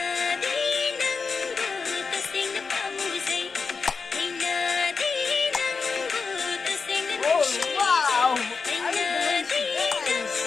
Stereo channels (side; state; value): right; quieter; 4.9 dB